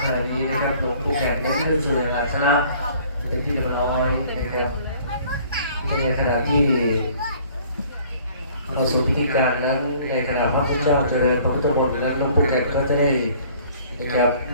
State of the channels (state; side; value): inverted; both; correlation -0.55